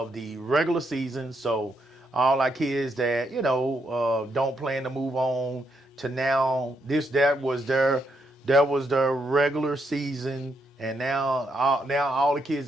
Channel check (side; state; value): both; normal; correlation 0.78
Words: the regular season. So all our kids that, you know, don't plan to move on to now, that was their regular season. And now all the kids